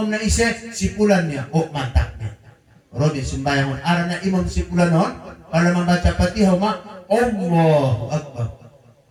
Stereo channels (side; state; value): both; identical; correlation 1.00